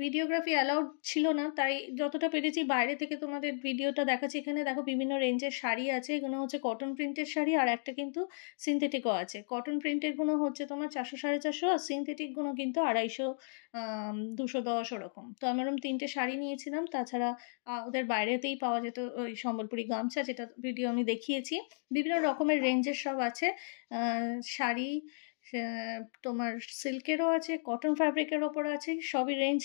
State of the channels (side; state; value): right; silent; digital silence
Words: ভিডিওগ্রাফি অ্যালাউড ছিল না, তাই যতটা পেরেছি বাইরে থেকে তোমাদের ভিডিওটা দেখাচ্ছি। এখানে দেখো বিভিন্ন রেঞ্জের শাড়ি আছে, এগুলো হচ্ছে কটন প্রিন্টের শাড়ি, আর একটা কিন্তু সিনথেটিকও আছে। কটন প্রিন্টের গুলো হচ্ছে তোমার 400 450, আর সিনথেটিক গুলো কিন্তু 250 210 ওরকম। তো আমি ওরকম 3টে শাড়ি নিয়েছিলাম। তাছাড়া ওদের বাইরেতেই পাওয়া যেত ওই সম্বলপুরি গামছা, যেটা ভিডিও আমি দেখিয়েছি। বিভিন্ন রকমের রেঞ্জের সব আছে শাড়ি, তোমার সিল্কেরও আছে, কটন ফ্যাব্রিকের ওপর আছে, সবই রেঞ্জ